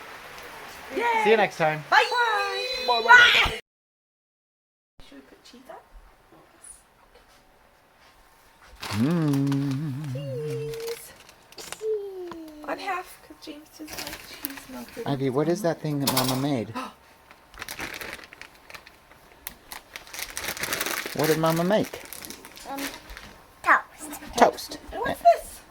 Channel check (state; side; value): identical; both; correlation 1.00